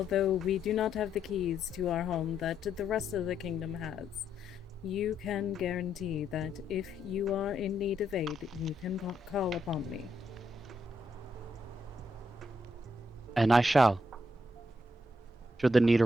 we do not have the keys to our home that the rest of the kingdom has, you can guarantee that if you are in need of aid, you can call upon me. And I shall, should the need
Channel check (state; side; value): normal; both; correlation 0.78